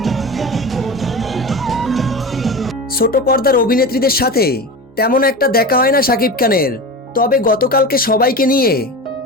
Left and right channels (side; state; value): both; normal; correlation 0.28